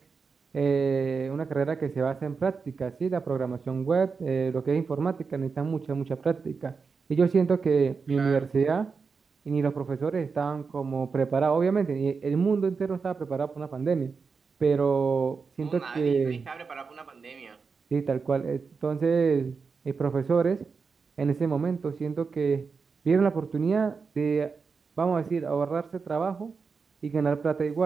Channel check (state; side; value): quieter; left; 5.1 dB